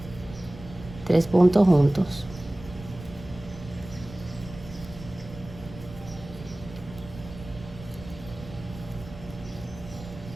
3 puntos juntos.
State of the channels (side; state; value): right; noise; rumble, 15 dB below the sound